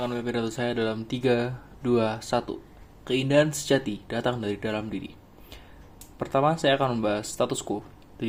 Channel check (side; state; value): both; identical; correlation 1.00